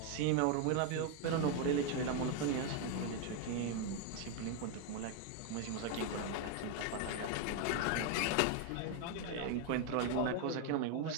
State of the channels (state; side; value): different; both; correlation 0.01